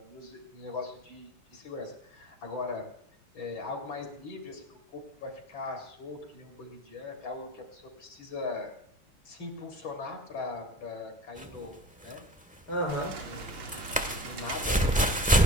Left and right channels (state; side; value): normal; both; correlation 0.37